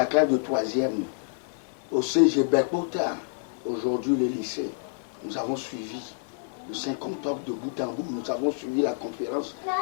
classe de 3e au CG Berkota, aujourd'hui le lycée. Nous avons suivi le 5 octobre de bout en bout. Nous avons suivi la conférence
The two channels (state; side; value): silent; right; 59 dB below the other